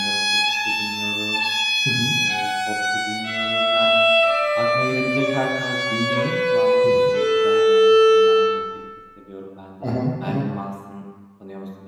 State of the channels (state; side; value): identical; both; correlation 1.00